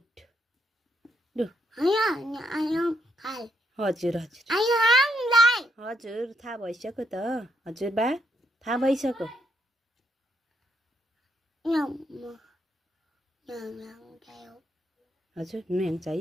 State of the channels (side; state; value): both; normal; correlation 0.76